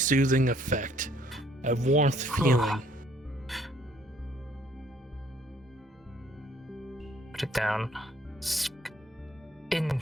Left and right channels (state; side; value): normal; both; correlation 0.63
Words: effect, a warmth feeling. Put it down.